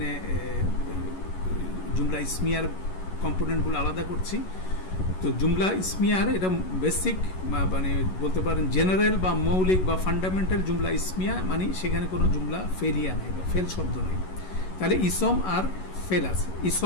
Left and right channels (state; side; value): late; right; 11 ms